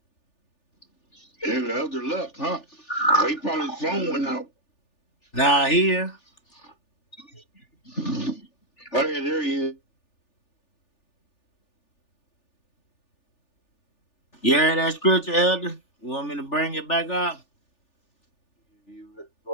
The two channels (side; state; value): right; late; 3.4 ms